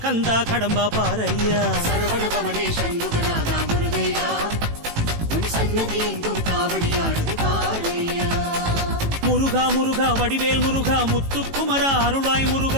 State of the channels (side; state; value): left; late; 18 ms